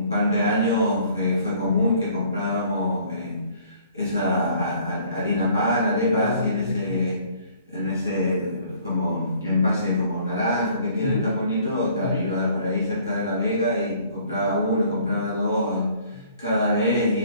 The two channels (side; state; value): both; inverted; correlation -0.57